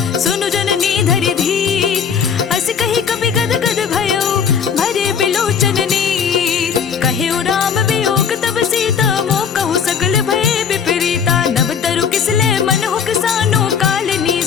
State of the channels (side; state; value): right; quieter; 7.1 dB